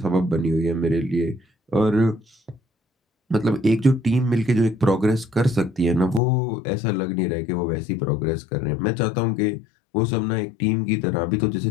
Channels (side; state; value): right; drops out; at 6.2 s